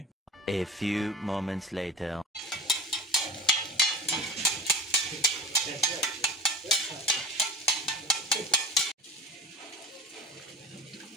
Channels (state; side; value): normal; both; correlation 0.36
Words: A few moments later.